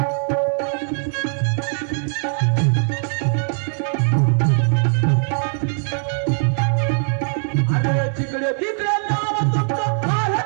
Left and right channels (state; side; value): silent; left; 62 dB below the other